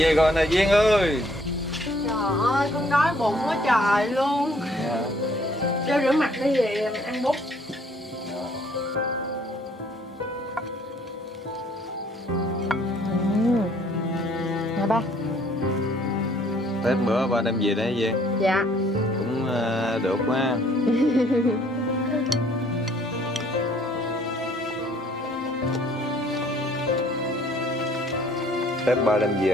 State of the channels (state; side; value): normal; both; correlation 0.61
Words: rồi nè Duyên ơi. Trời ơi, con đói bụng quá trời luôn. Cho rửa mặt đi về mình ăn bút. Nè ba. Tết bữa ba đem về đấy Duyên. Dạ. Cũng được quá. Tết ba đem